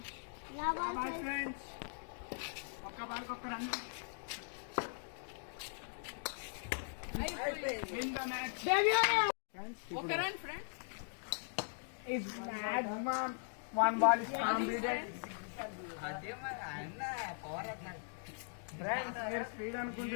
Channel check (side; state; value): right; silent; digital silence